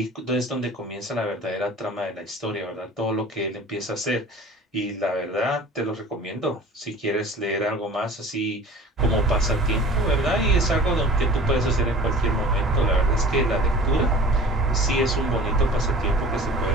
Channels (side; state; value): both; normal; correlation 0.44